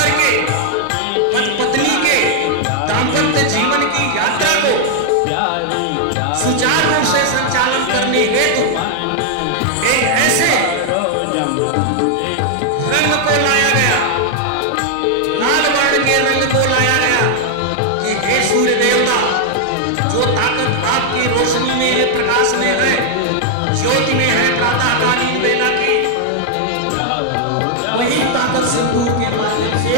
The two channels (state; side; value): different; both; correlation 0.00